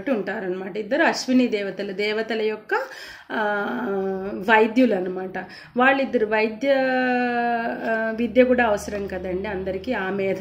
ఉంటారనమాట. ఇద్దరు అశ్విని దేవతల యొక్క వైద్యులు అనమాట. వాళ్ళిద్దరు విద్య కూడా అవసరం కదండి అందరికీ, ఆ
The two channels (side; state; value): both; identical; correlation 1.00